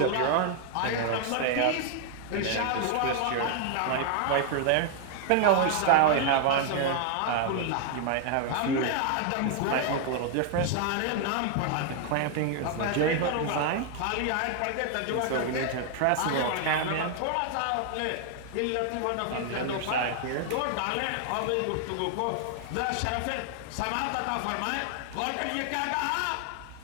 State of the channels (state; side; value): different; both; correlation 0.00